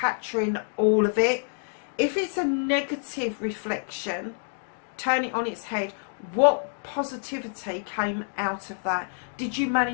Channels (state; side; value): silent; right; digital silence